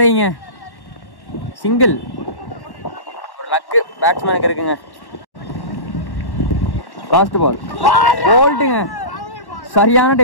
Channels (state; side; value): late; right; 1.1 ms